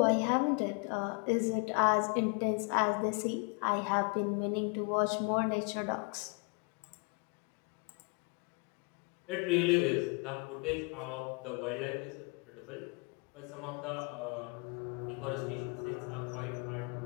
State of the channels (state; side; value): quieter; right; 32.9 dB